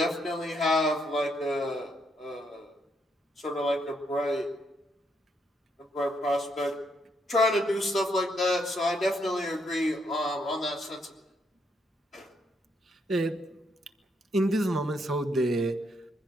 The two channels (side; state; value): both; normal; correlation 0.75